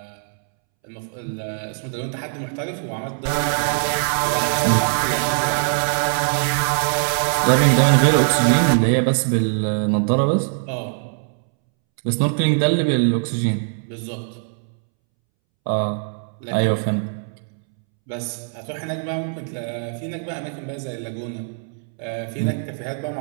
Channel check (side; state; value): left; silent; 64 dB below the other